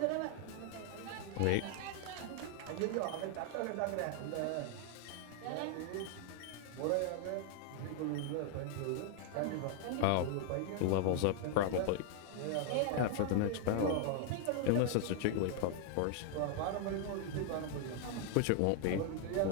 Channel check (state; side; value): different; both; correlation 0.00